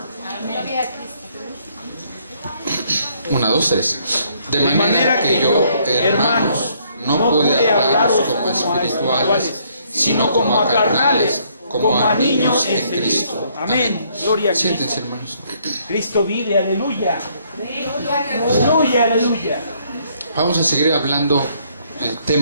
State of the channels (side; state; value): both; inverted; correlation -0.67